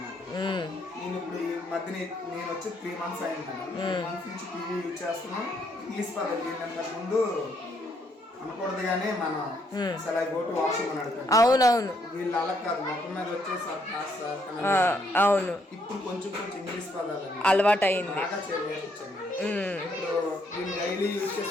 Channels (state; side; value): normal; both; correlation 0.72